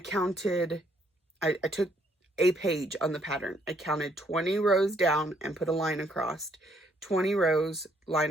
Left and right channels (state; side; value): normal; both; correlation 0.68